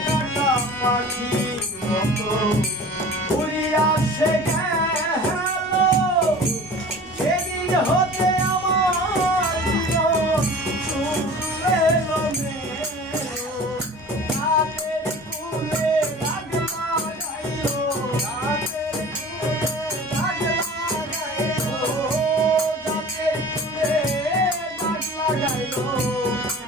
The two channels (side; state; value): both; normal; correlation 0.41